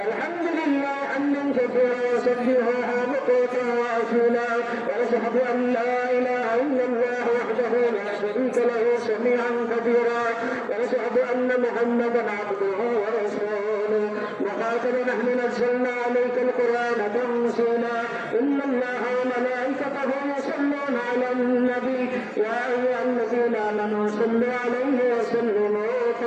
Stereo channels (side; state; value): both; identical; correlation 1.00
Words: الحمد لله حمدا كثيرا وسبحه بكرة وأصيلا ونشهد أن لا إله إلا الله وحده لا شريك له سميعا كبيرا ونشهد أن محمدا عبده ورسوله وخاتم نحن نزلنا عليك القرآن تنزيلا إن الله وملائكته يصلون على النبي يا أيها الذين آمنوا صلوا عليه وسلموا